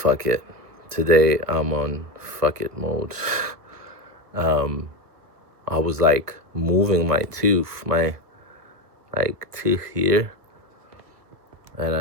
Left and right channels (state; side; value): late; left; 1.6 ms